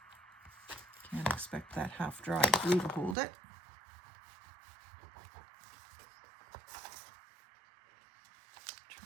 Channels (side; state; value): left; drops out; at 3.2 s